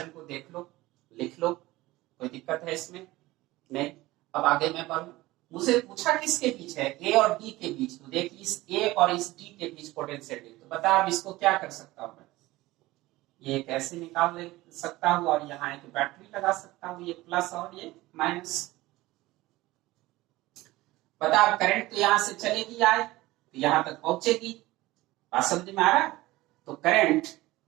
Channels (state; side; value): quieter; left; 18.7 dB